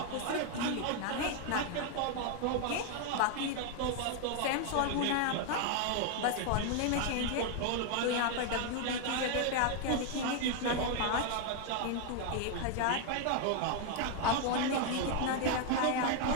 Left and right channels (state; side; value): different; both; correlation 0.00